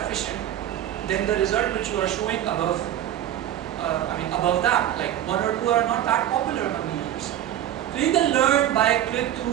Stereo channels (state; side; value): quieter; left; 11.7 dB